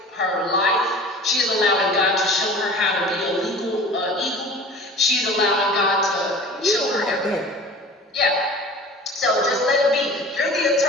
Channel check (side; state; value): both; normal; correlation 0.41